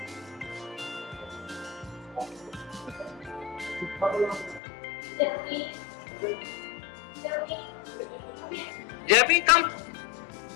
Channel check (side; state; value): right; drops out; at 4.6 s